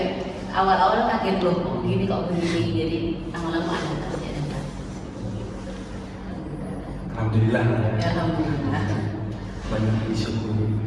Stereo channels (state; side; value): identical; both; correlation 1.00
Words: awal-awal kaget loh, kok gini kok begini. Jadi lama-lama adaptasi. Alhamdulillah ya. Alhamdulillah. Banyak disyukuri.